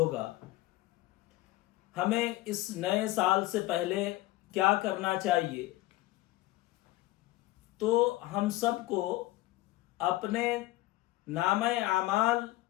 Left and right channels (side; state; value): right; quieter; 18.3 dB